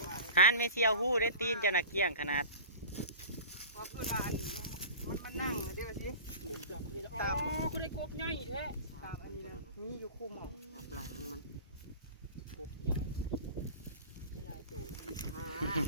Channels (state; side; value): inverted; both; correlation -0.37